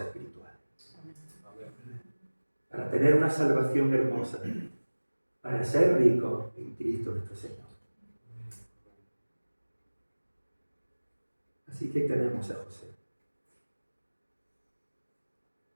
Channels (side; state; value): both; inverted; correlation -1.00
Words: espirituales. Para tener una salvación hermosa, para ser ricos en Cristo nuestro Señor. Así que tenemos a José.